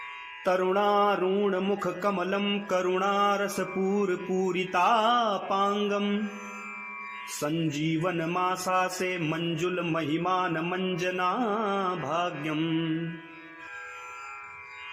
तरुणारुणमुखकमलं करुणारसपूरपूरितापाङ्गम् सञ्जीवनमासासे मञ्जुलमहिमानमञ्जना भाग्यम्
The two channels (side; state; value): both; identical; correlation 1.00